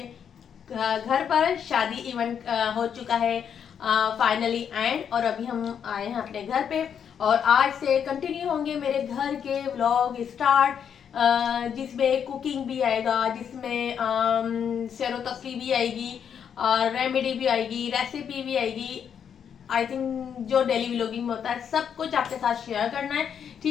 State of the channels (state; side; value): quieter; right; 8.0 dB